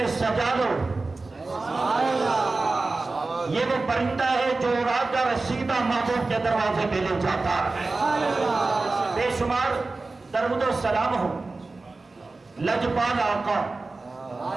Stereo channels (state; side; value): quieter; left; 3.5 dB